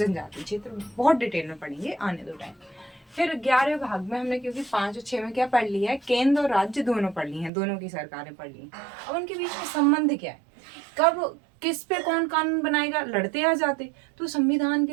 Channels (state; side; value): drops out; left; at 7.5 s